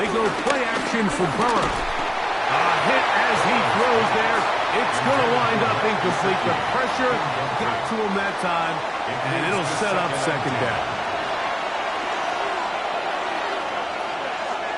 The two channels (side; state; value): both; identical; correlation 1.00